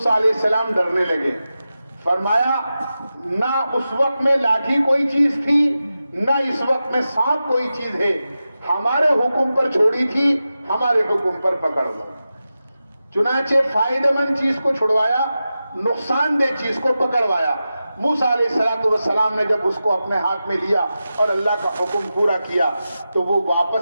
علیہ السلام ڈرنے لگے۔ فرمایا نہ اس وقت میں لاٹھی کوئی چیز تھی، نہ اس وقت میں سانپ کوئی چیز ہے، ہمارے حکم پر چھوڑی تھی، ہمارے حکم پر پکڑ لو۔ چنانچہ فائدہ مند چیز کو چھڑوایا، نقصان دہ چیز کو پکڑوایا۔ موسیٰ علیہ السلام نے جب اس کو اپنے ہاتھ میں لیا اور اللہ کا حکم پورا کیا تو وہ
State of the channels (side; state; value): both; inverted; correlation -0.92